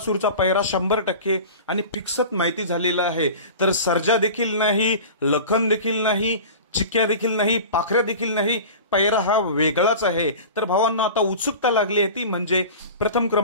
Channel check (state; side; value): inverted; both; correlation -0.35